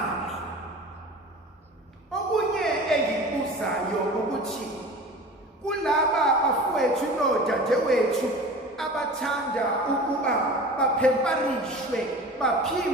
Okunye engikubuzayo ukuthi kulaba bafowethu nodadewethu abathanda ukuba baphemparishwe,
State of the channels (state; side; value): normal; both; correlation 0.38